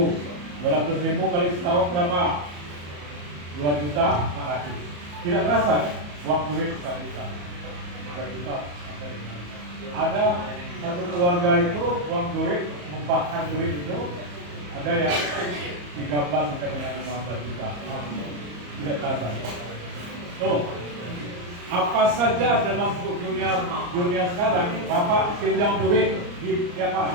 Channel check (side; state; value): left; late; 34 ms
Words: 200.000 kali setahun berapa? 2 juta 400. Tidak terasa kan? Uang duit 1 juta. 2 juta. Ada satu keluarga itu uang duit, membakar duit itu ada yang 13 sampai dengan 15 juta. Tidak terasa. Tuh. Apa saja dalam dunia sekarang, Bapak pinjam duit di siapa?